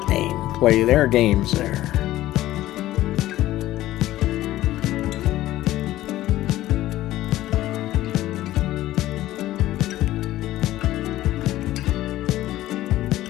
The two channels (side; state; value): right; quieter; 15.1 dB